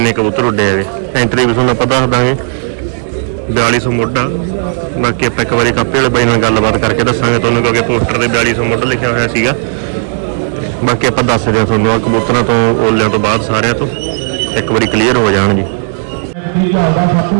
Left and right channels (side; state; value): left; silent; digital silence